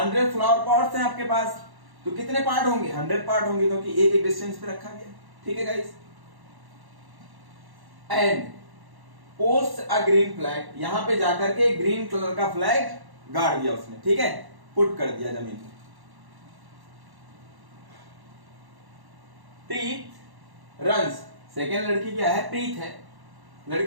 फ्लावर पॉट्स हैं आपके पास, तो कितने पार्ट होंगे, 100 पार्ट होंगे, क्योंकि एक एक डिस्टेंस पे रखा गया, ठीक है guys. And post a green flag, यहां पे जाकर के ग्रीन कलर का फ्लैग गाड़ दिया उसने, ठीक है, पुट कर दिया जमीन में। प्रीत रन्स, सेकेंड लड़की क्या है, प्रीत है,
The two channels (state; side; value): late; left; 1.1 ms